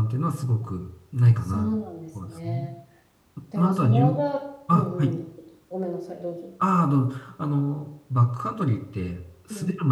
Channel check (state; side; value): identical; both; correlation 1.00